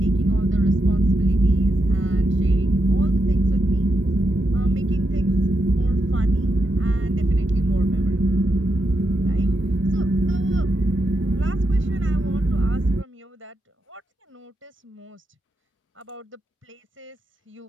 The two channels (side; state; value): both; normal; correlation 0.84